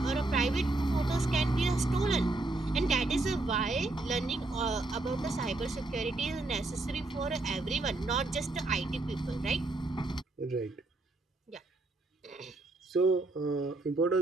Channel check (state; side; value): quieter; left; 3.0 dB